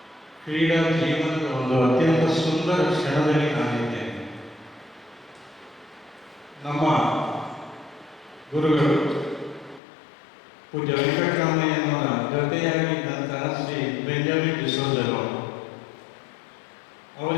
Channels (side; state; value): right; drops out; at 9.8 s